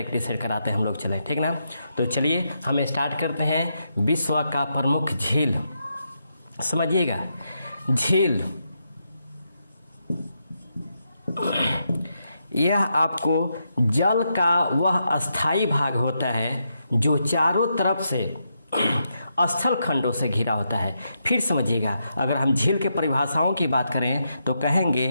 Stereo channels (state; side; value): inverted; both; correlation -0.82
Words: कराते हैं हम लोग। चलें, ठीक ना। तो चलिए हम स्टार्ट करते हैं। विश्व का प्रमुख झील, समझिएगा, झील यह आपको जल का वह अस्थाई भाग होता है जो चारों तरफ से स्थल खंडों से घिरा होता है। फिर समझिएगा, अगर हम झील के परिभाषाओं की बात करें तो